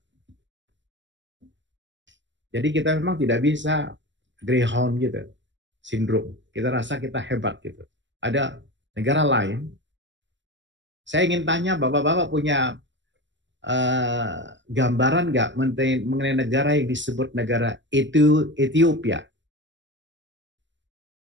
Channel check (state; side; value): late; left; 0.53 ms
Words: Jadi kita memang tidak bisa greyhound gitu, sindrom. Kita rasa kita hebat gitu. Ada negara lain. Saya ingin tanya, bapak-bapak punya gambaran nggak mengenai negara yang disebut negara Ethiopia?